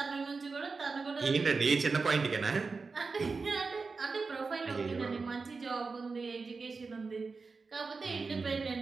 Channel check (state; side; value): quieter; left; 4.4 dB